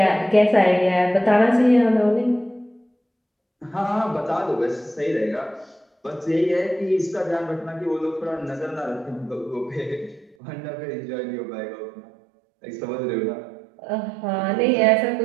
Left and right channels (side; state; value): left; drops out; at 10.4 s